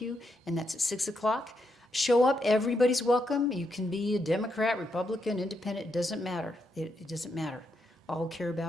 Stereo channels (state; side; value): normal; both; correlation 0.80